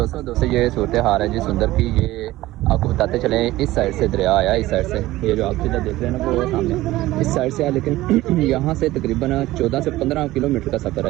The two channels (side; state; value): left; quieter; 16.9 dB